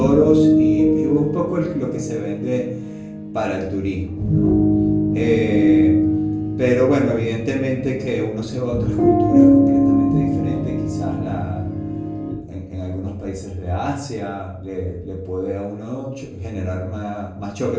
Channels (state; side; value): identical; both; correlation 1.00